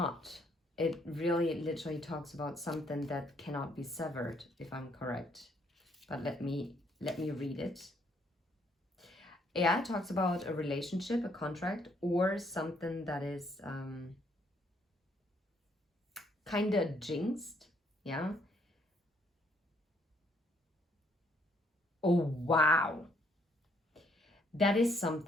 it really literally talks about something that cannot be severed, if I'm correct. But let me read it. Yeah, it talks about a relationship, a contract, or something that is kind of jinxed. Yeah. Oh, wow. That is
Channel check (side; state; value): both; normal; correlation 0.68